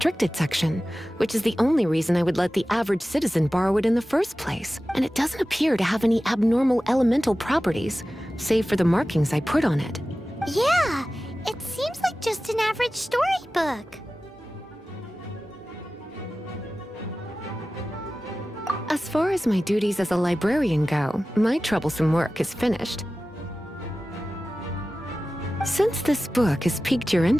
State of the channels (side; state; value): both; normal; correlation 0.95